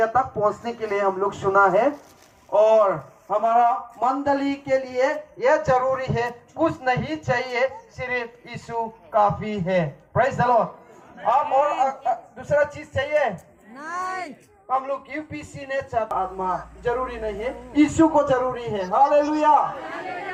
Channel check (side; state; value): both; identical; correlation 1.00